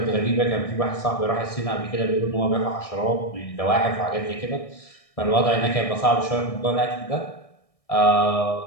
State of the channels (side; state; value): right; late; 1.6 ms